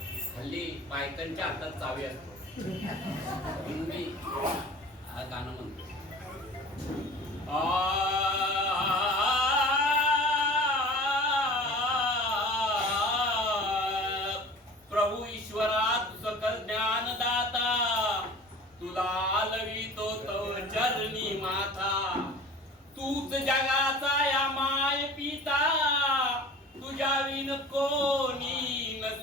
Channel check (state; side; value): normal; both; correlation 0.41